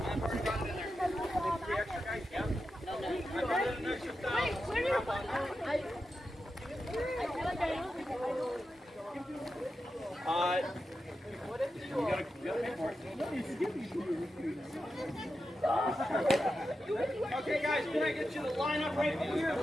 Okay, guys, can I get you to line up right here?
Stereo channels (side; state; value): both; normal; correlation 0.90